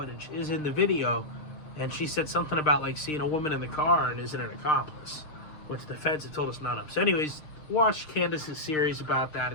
is in the video, and she said something about like seeing a woman in the car and isn't an accomplice, which the feds have told us none of. So anyways, watch Candace's series about that.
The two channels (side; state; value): right; late; 6.6 ms